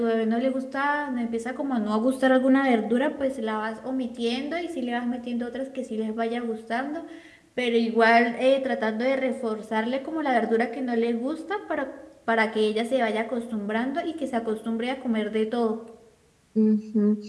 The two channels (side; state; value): both; identical; correlation 1.00